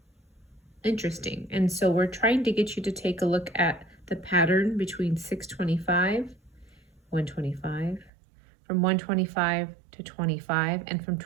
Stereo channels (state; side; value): drops out; left; at 8.1 s